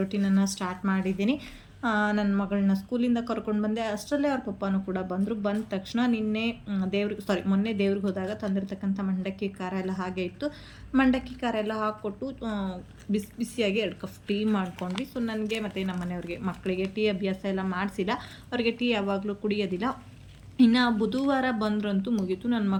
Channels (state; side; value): identical; both; correlation 1.00